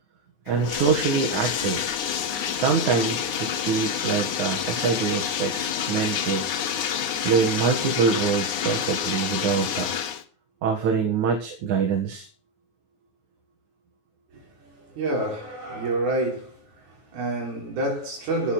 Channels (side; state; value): left; late; 9.6 ms